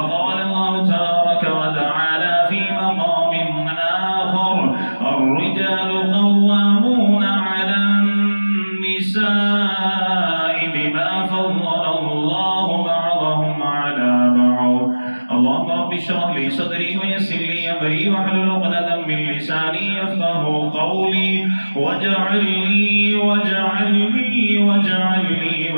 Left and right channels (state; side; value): inverted; both; correlation -1.00